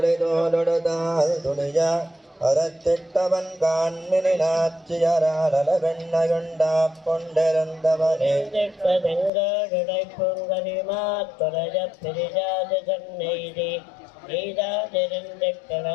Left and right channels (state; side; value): drops out; right; at 9.3 s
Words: துணியா அறத்திட்டவன் காண்மினாட்சியராடல வெண்ணையுண்டா கொண்டிருந்தவனே தெங்கடை பொங்கலிமா தொலைய பிரிஜாது கண்ணெய்தி